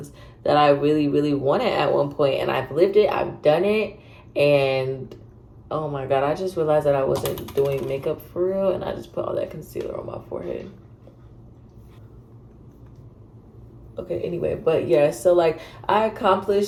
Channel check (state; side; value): identical; both; correlation 1.00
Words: that I really wanted at one point, and I've lived it. I've done it. And oh my God, I just realized that I wasn't doing makeup for real, and I just put all that concealer on my forehead. Okay, anyway, but yeah, so like I